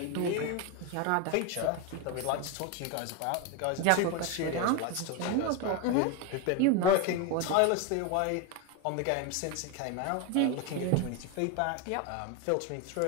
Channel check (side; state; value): both; different; correlation 0.02